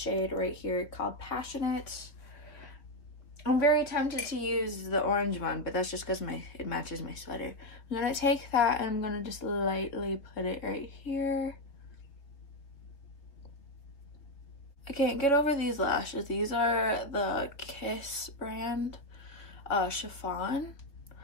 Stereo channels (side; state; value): right; late; 3.4 ms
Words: right here called Passionate. I'm very tempted to use the orange one, but that's just because it matches my sweater. I'm gonna take that and I'm gonna just lightly put it right here. I can't get over these lashes. These are the Kiss brand chiffon